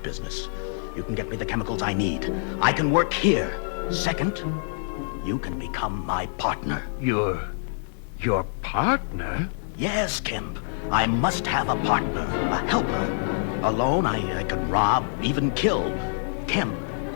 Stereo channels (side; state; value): right; silent; digital silence